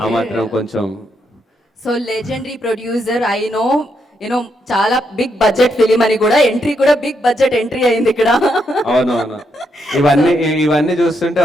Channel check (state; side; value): normal; both; correlation 0.79